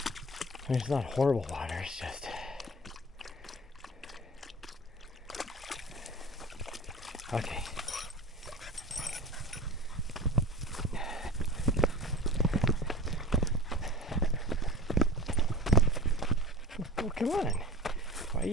I mean, it's not horrible water, it's just... Okay. Oh, come on. Why are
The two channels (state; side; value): normal; both; correlation 0.36